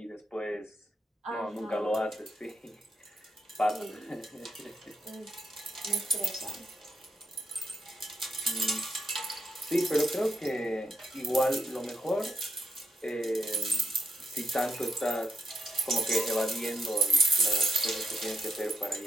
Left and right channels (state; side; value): normal; both; correlation 0.81